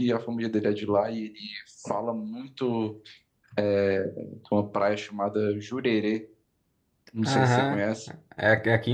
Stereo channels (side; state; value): both; identical; correlation 1.00